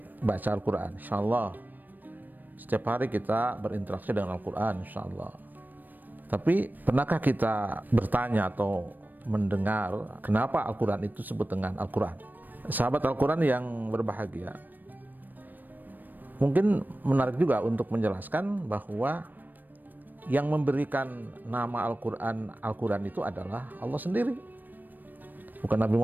baca Al-Quran, insya-Allah. Setiap hari kita berinteraksi dengan Al-Quran, insya-Allah. Tapi pernahkah kita bertanya atau mendengar kenapa Al-Quran itu disebut dengan Al-Quran? Sahabat Al-Quran yang berbahagia, mungkin menarik juga untuk menjelaskan bahwa yang memberikan nama Al-Quran itu adalah Allah sendiri, bukan Nabi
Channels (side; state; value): left; late; 0.089 ms